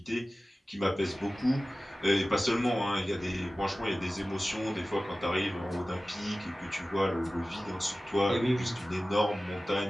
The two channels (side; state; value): both; normal; correlation 0.96